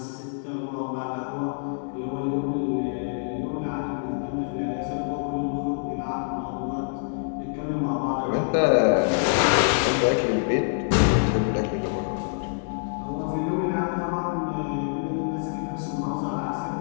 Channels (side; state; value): right; silent; digital silence